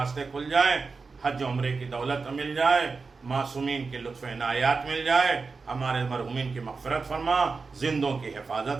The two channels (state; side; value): quieter; left; 4.5 dB